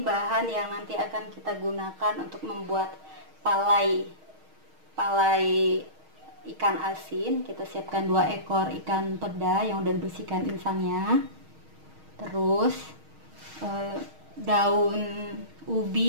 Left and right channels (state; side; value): late; left; 6.4 ms